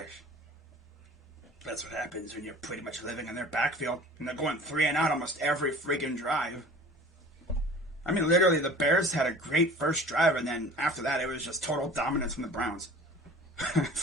That's what happens when you're pretty much living in their backfield. And they're going 3 and out almost every freaking drive. I mean, literally, the Bears had a great first drive, and then after that, it was just total dominance from the Browns.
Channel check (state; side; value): normal; both; correlation 0.43